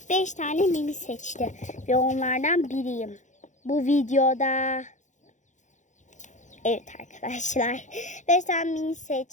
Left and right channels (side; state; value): right; late; 0.35 ms